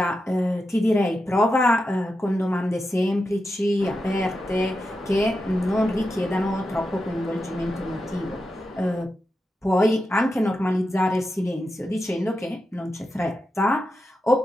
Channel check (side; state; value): both; normal; correlation 0.89